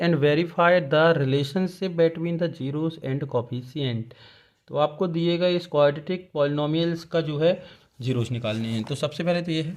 verify the relationship between the zeros and coefficient। तो आपको दिएगा इस क्वाड्रेटिक पॉलिनोमियल्स का जो है जीरोस निकालने हैं। तो सबसे पहले तो ये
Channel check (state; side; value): identical; both; correlation 1.00